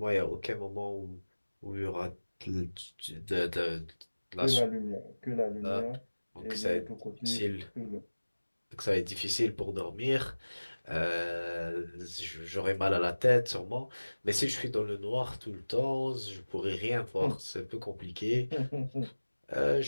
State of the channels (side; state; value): both; inverted; correlation -1.00